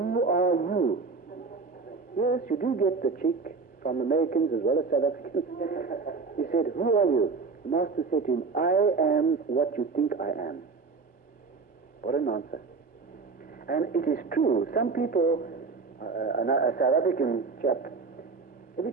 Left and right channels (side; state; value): left; quieter; 4.5 dB